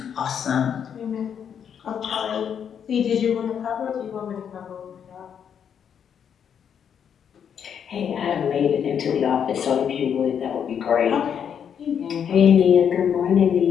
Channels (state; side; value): quieter; right; 8.0 dB